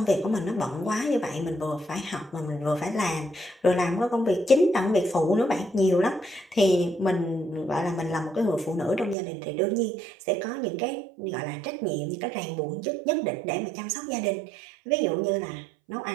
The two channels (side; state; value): left; drops out; at 9.2 s